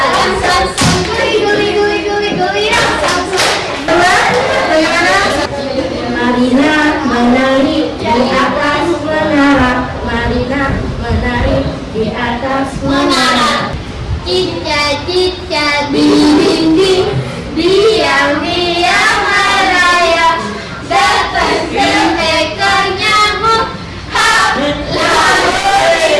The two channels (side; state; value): both; identical; correlation 1.00